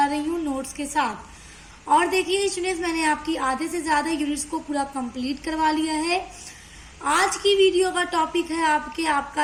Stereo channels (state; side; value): identical; both; correlation 1.00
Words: रही हूँ नोट्स के साथ। और देखिए स्टूडेंट्स, मैंने आपकी आधे से ज़्यादा यूनिट्स को पूरा कंप्लीट करवा लिया है। आज की वीडियो का टॉपिक है